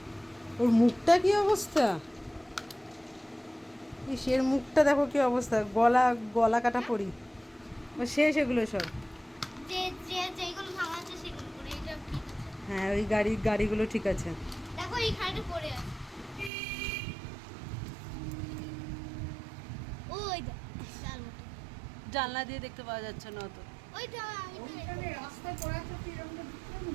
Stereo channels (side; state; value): left; drops out; at 16.5 s